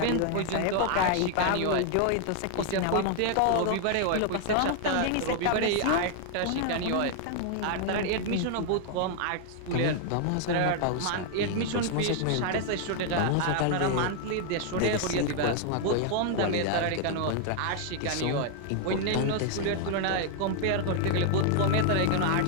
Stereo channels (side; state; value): both; different; correlation 0.00